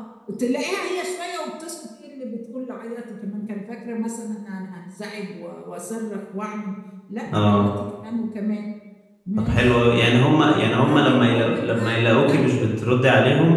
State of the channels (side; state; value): both; identical; correlation 1.00